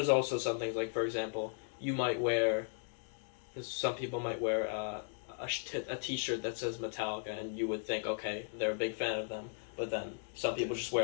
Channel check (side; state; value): right; silent; digital silence